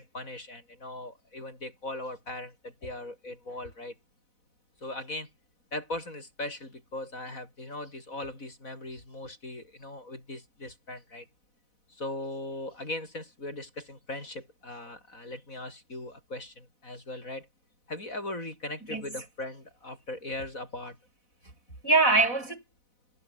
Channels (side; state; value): right; late; 4.0 ms